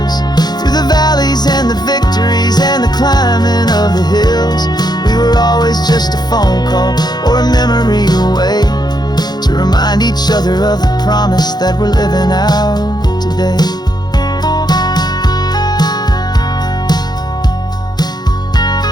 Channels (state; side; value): late; right; 0.20 ms